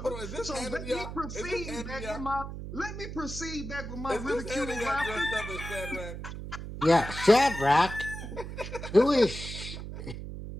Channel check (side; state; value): right; noise; hum, 8 dB below the sound